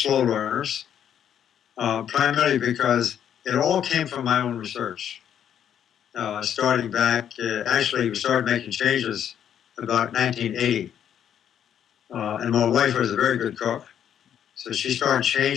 learners, primarily because it all came from my own research. Starting back, actually, we started making changes about 1980. And my wife was a very good cook. So she started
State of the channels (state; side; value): quieter; right; 9.4 dB